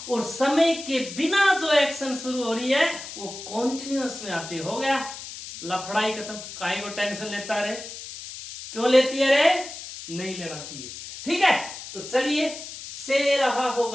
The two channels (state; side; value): noise; left; hiss, 11 dB below the sound